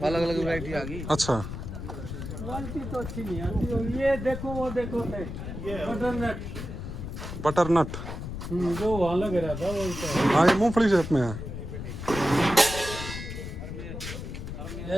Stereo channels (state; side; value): noise; left; rumble, 7 dB below the sound